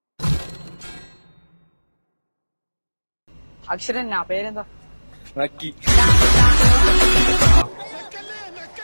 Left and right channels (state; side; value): inverted; both; correlation -1.00